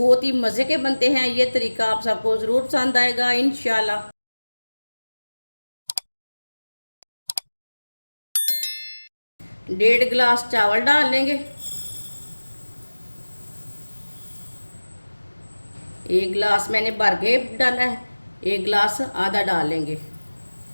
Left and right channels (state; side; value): inverted; both; correlation -1.00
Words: ही मज़े के बनते हैं। ये तरीका आप सबको ज़रूर पसंद आएगा इंशाल्लाह। 1.5 गिलास चावल डाल लेंगे। 1 गिलास मैंने भर के डाला है, 1 गिलास आधा डाल लेंगे।